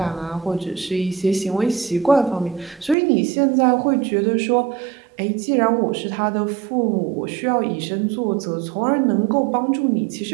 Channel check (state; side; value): drops out; left; at 3.0 s